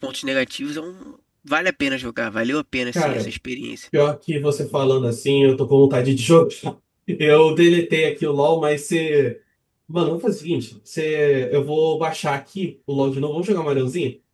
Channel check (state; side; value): identical; both; correlation 1.00